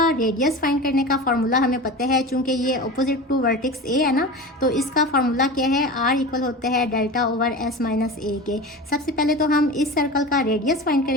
रेडियस फाइंड करने का फार्मूला हमें पता है, चूंकि ये अपोजिट टू वर्टेक्स ए है ना, तो इसका फार्मूला क्या है, आर इक्वल होता है delta over S minus a के। सबसे पहले तो हम इस सर्कल का रेडियस फाइंड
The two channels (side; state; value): both; normal; correlation 0.31